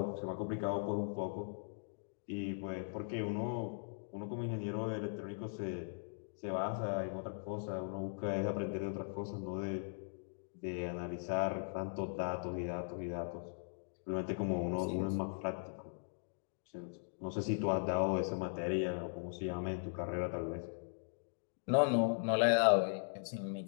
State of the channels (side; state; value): right; silent; digital silence